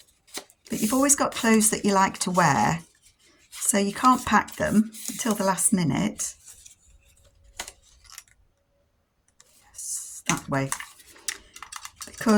But you've always got clothes that you like to wear, so you can't pack them until the last minute. Yes, that way,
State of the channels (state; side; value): identical; both; correlation 1.00